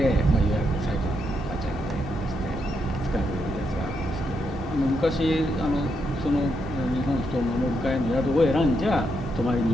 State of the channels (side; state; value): both; normal; correlation 0.80